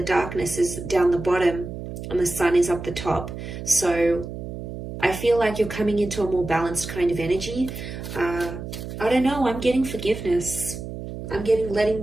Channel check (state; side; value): noise; right; hum, 9 dB below the sound